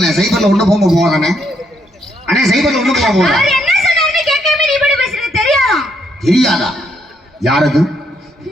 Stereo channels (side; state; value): both; normal; correlation 0.73